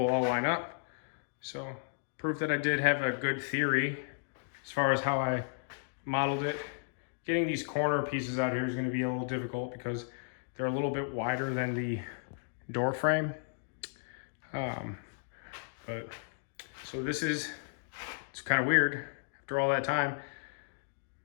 all line up. So proof that I did have a good theory as far as how I modeled it. Getting these corner pieces out here is going to be a little difficult because they're a little bit wider than the door frame. But so this is, it's kind of weird after all that time,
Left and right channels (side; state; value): right; silent; digital silence